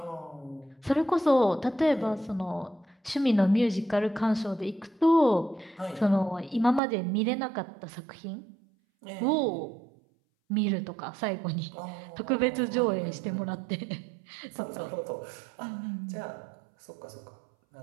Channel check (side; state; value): left; drops out; at 6.8 s